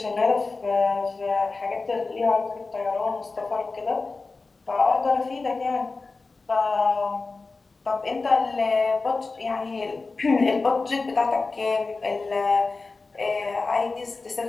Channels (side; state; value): right; quieter; 3.9 dB